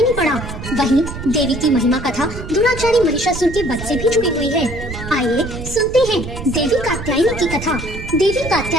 पड़ा। वहीं देवी की महिमा कथा दुराचारी महिषासुर के वध से भी जुड़ी हुई है। आइए सुनते हैं देवी कात्यायनी की कथा। देवी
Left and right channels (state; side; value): noise; right; rumble, 9 dB below the sound